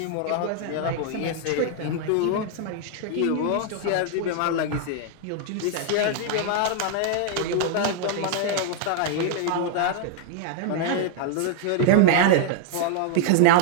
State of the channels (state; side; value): different; both; correlation 0.00